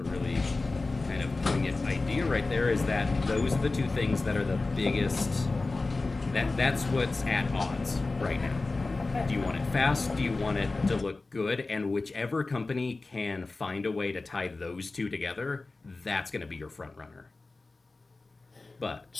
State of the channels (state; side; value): quieter; right; 3.5 dB